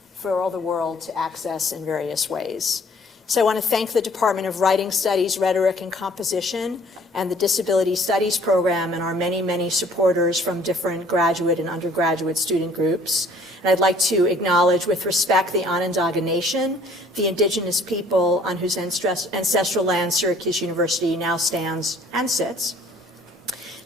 for all the world to access in various ways. So I want to thank the Department of Writing Studies, Rhetoric, and Composition, and the Disability Studies program, and our many, many supporters from different graduate and undergraduate student groups. And I'd like to acknowledge with respect the Onondaga Nation, the indigenous people on whose ancestral land Syracuse University now stands and sits.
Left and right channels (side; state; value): both; normal; correlation 0.56